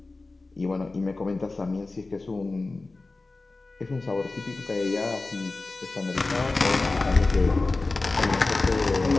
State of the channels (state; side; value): quieter; right; 3.4 dB